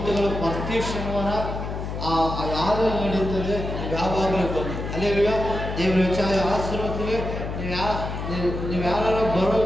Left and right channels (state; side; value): noise; left; hum, 5 dB below the sound